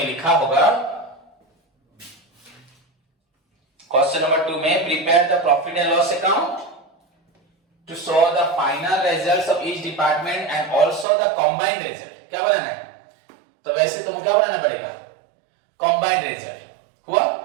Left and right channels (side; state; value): left; drops out; at 11.1 s